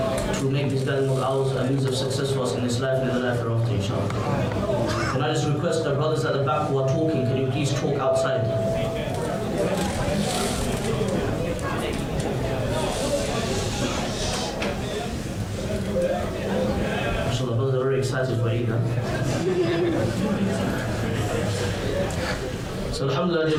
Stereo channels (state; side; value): identical; both; correlation 1.00